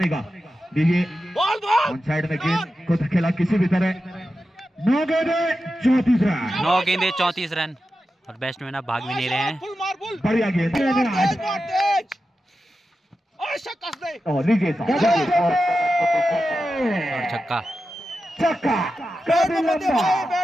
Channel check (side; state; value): both; normal; correlation 0.91